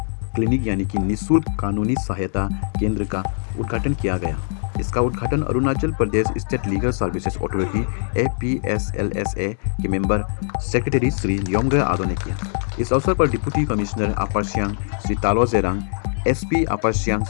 clinic यानी कि निःशुल्क कानूनी सहायता केंद्र का उद्घाटन किया गया। इसका उद्घाटन Arunachal Pradesh state legal services authority APSLSA के मेंबर सेक्रेटरी श्री योंगे आदो ने किया। इस अवसर पर deputy commissioner upper Siang Shri Talo Jerang, SP upper Siang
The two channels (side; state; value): right; silent; digital silence